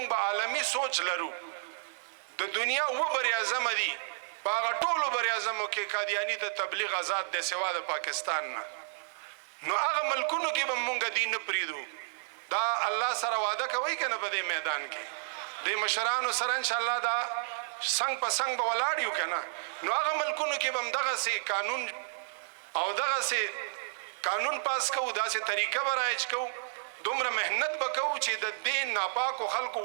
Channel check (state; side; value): silent; left; digital silence